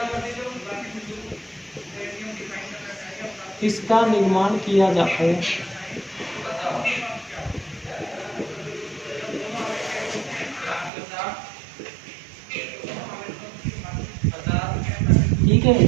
इसका निर्माण किया जाता है, ठीक है।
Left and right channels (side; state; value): left; drops out; at 10.9 s